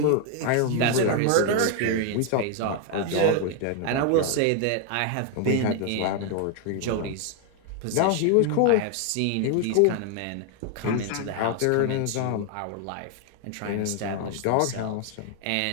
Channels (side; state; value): both; different; correlation 0.00